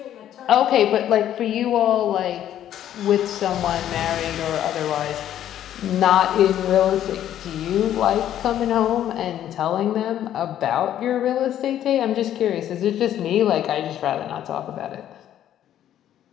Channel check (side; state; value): right; quieter; 11.3 dB